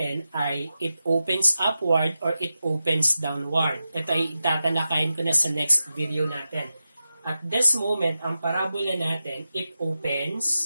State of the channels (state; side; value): inverted; both; correlation -0.92